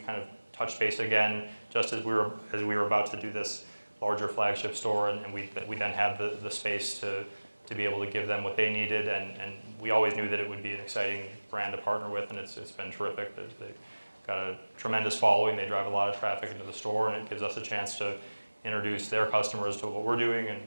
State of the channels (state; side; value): inverted; both; correlation -1.00